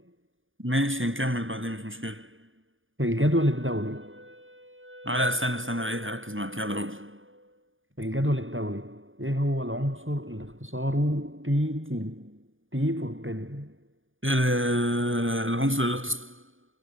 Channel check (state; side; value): late; left; 0.58 ms